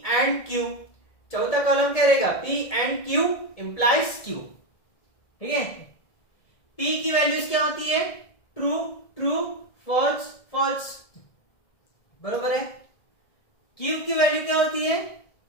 एंड Q, चौथा कॉलम क्या रहेगा, P and Q implies Q। ठीक है, P की वैल्यूज क्या होती है, ट्रू ट्रू फॉल्स फॉल्स, बरोबर है। Q की वैल्यू क्या होती है,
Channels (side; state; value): right; late; 1.6 ms